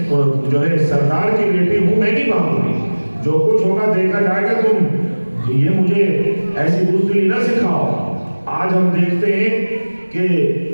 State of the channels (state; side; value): inverted; both; correlation -1.00